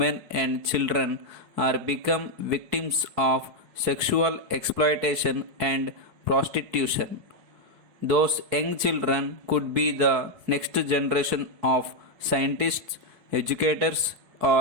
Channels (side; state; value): left; late; 4.6 ms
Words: and children are become victims of sexual exploitation and prostitution. Those young children could be the next generation of scientists, educators,